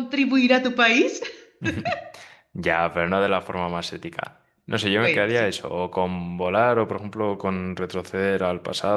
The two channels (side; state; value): both; identical; correlation 1.00